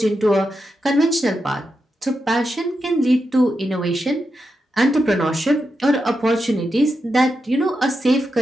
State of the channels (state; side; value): normal; both; correlation 0.87